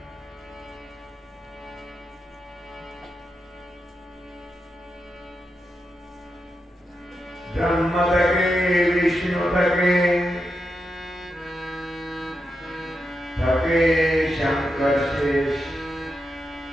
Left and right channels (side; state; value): both; normal; correlation 0.87